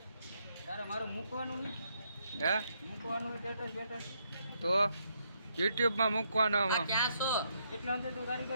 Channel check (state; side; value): inverted; both; correlation -0.75